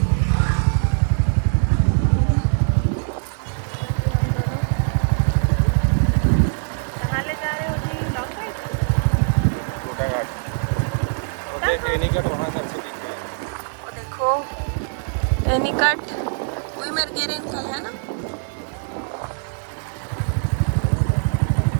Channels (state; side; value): silent; left; digital silence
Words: कहाँ ले जा रहे हो जी? Long ride? छोटा घाट वो देख एनीकट वहाँ से अच्छे दिख रहे हैं। वो देखो एनीकट वही मेरे गेरे निकल है ना।